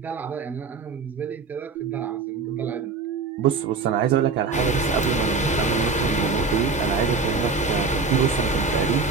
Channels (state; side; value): quieter; left; 4.5 dB